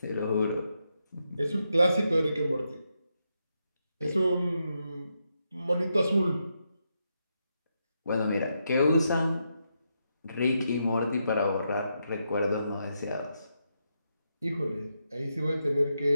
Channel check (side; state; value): both; inverted; correlation -0.83